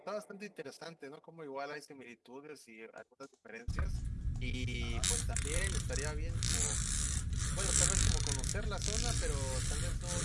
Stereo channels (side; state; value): both; identical; correlation 1.00